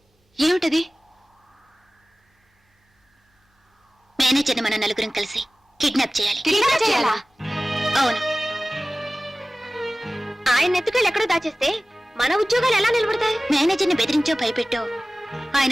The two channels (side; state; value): both; normal; correlation 0.97